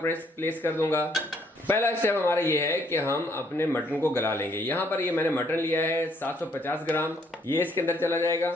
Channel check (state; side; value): normal; both; correlation 0.68